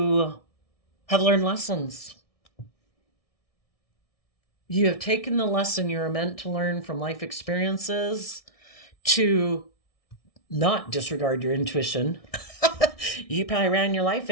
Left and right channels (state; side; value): late; right; 1.6 ms